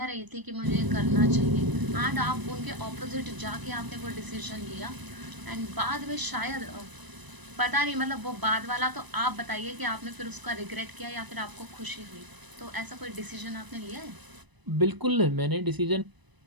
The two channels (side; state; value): left; late; 1.0 ms